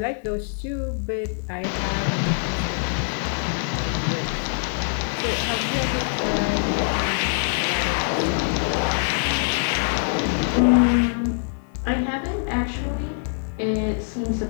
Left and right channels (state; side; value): silent; right; digital silence